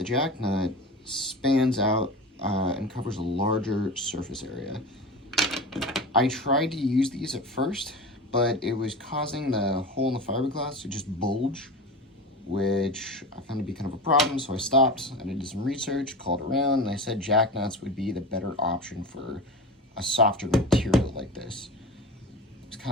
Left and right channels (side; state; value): both; normal; correlation 0.30